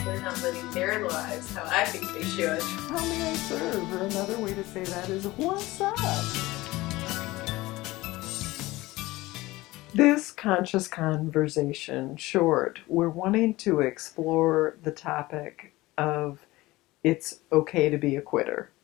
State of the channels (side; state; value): right; quieter; 19.4 dB